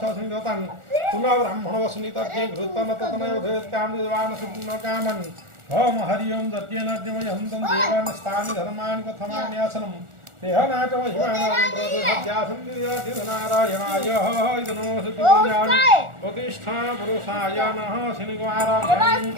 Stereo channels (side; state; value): left; late; 1.4 ms